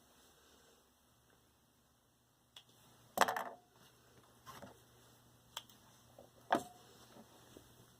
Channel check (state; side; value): identical; both; correlation 1.00